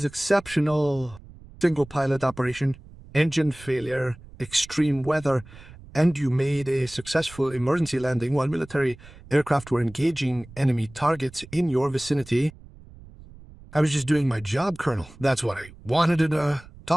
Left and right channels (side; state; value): right; noise; rumble, 20 dB below the sound